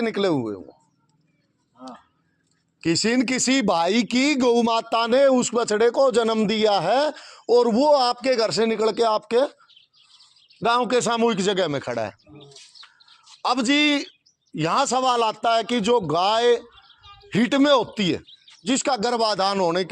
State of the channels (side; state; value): both; identical; correlation 1.00